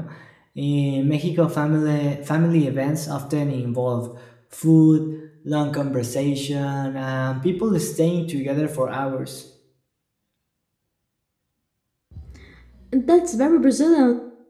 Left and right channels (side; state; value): both; identical; correlation 1.00